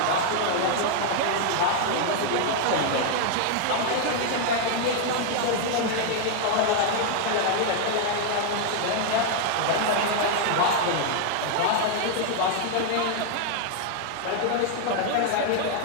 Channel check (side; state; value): both; different; correlation 0.00